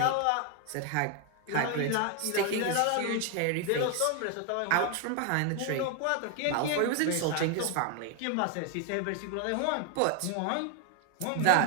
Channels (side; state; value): both; different; correlation 0.00